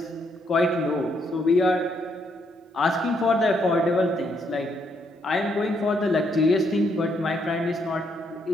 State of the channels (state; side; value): normal; both; correlation 0.74